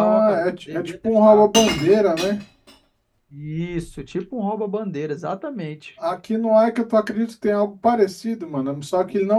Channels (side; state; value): both; identical; correlation 1.00